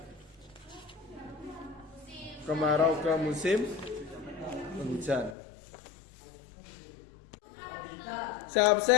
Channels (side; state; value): right; drops out; at 5.4 s